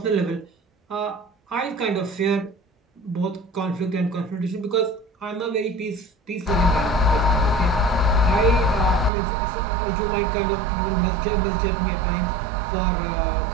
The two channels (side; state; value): left; drops out; at 9.1 s